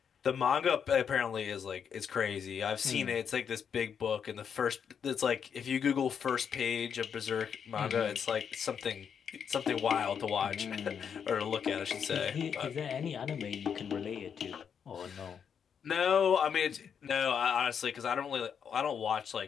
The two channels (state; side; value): quieter; right; 7.4 dB